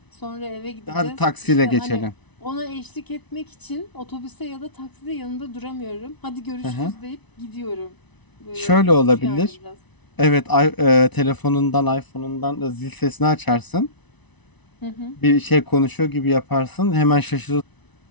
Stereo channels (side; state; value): right; late; 1.0 ms